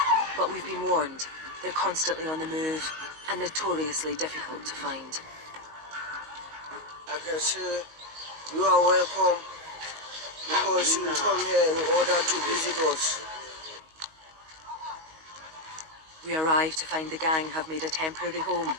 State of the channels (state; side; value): late; left; 19 ms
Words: But we've been warned, they're constantly on the move and notoriously difficult to find. I can say you are welcome because you come here in order to visit us. We arrive to find the gang have made a temporary home